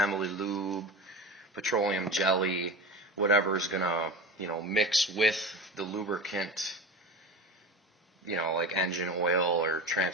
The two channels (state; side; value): normal; both; correlation 0.29